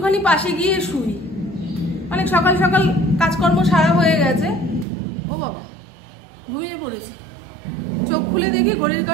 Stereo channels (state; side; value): drops out; left; at 4.9 s